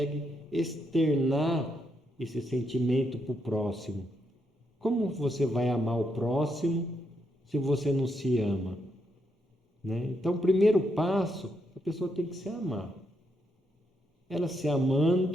externar esse sentimento para o próximo. Como você vai amar o próximo se você não se ama? Né? Então, o primeiro passo, a pessoa tem que se amar. Ela se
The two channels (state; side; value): normal; both; correlation 0.79